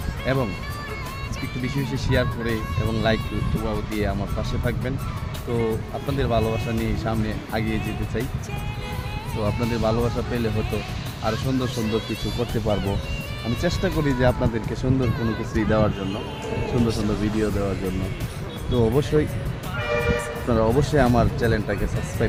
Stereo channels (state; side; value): identical; both; correlation 1.00